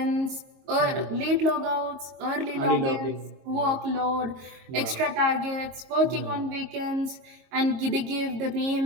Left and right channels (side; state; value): left; late; 22 ms